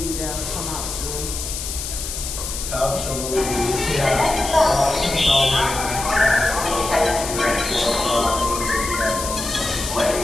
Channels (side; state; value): left; noise; hiss, 6 dB below the sound